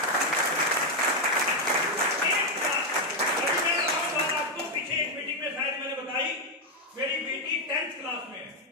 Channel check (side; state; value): both; normal; correlation 0.02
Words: आपको पीछे एक मीटिंग में शायद मैंने बताई, मेरी बेटी 10th क्लास में है,